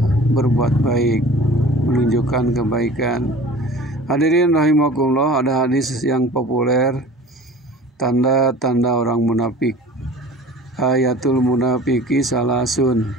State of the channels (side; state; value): both; normal; correlation 0.42